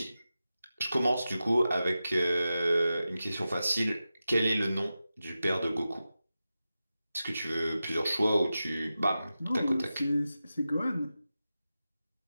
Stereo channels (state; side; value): inverted; both; correlation -0.93